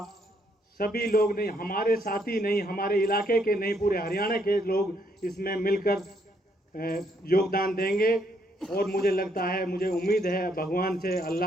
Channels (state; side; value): normal; both; correlation 0.72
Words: सभी लोग नहीं, हमारे साथी नहीं, हमारे इलाके के नहीं, पूरे हरियाणा के लोग इसमें मिलकर योगदान देंगे। और मुझे लगता है, मुझे उम्मीद है भगवान से,